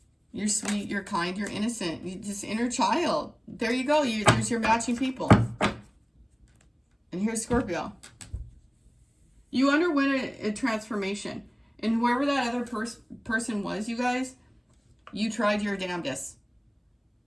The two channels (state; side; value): identical; both; correlation 1.00